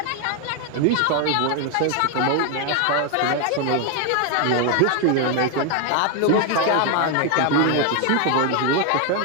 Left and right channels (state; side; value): different; both; correlation 0.01